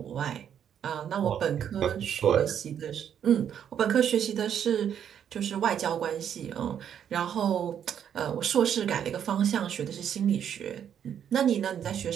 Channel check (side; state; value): left; quieter; 9.0 dB